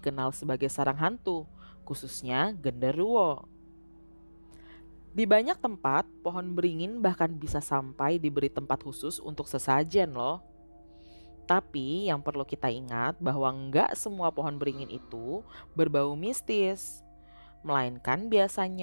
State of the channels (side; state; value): both; inverted; correlation -1.00